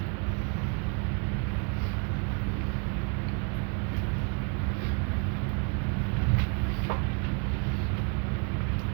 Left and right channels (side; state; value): left; quieter; 34.5 dB